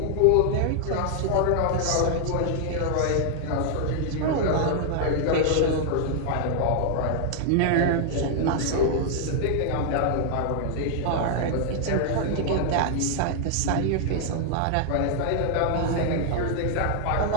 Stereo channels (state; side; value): different; both; correlation 0.00